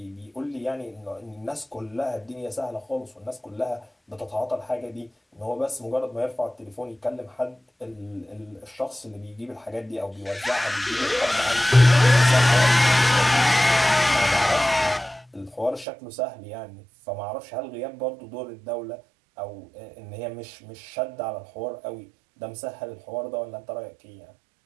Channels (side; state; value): left; drops out; at 15.9 s